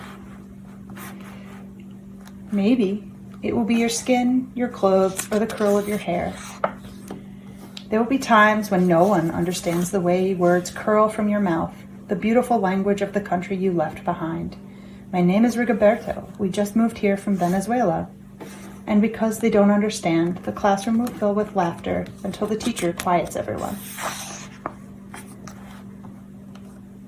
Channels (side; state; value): both; identical; correlation 1.00